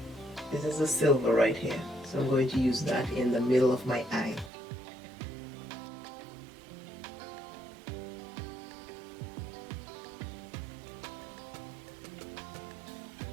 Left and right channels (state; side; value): drops out; left; at 4.5 s